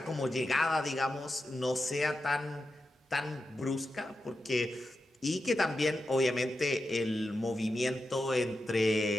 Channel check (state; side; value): normal; both; correlation 0.89